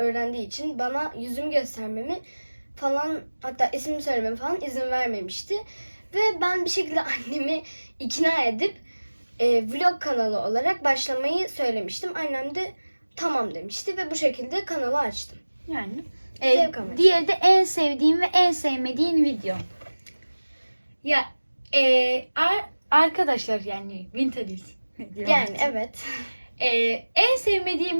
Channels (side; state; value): both; inverted; correlation -1.00